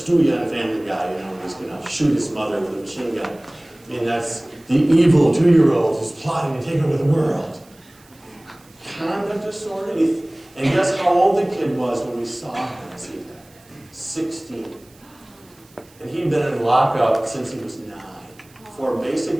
on Family Guy, when he's gonna shoot his mother with a machine gun. I mean, that's the evil 2-year-old who's plotting to take over the world. Conduct disorder, and guess how old the kid was when we saw him? See that? 16. And he'd been in lockup since he was 9 for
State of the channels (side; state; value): right; noise; hiss, 28 dB below the sound